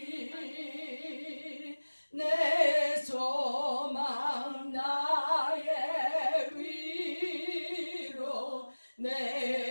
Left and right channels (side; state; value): both; inverted; correlation -1.00